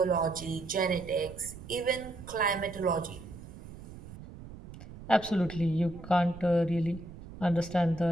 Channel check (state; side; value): noise; right; rumble, 15 dB below the sound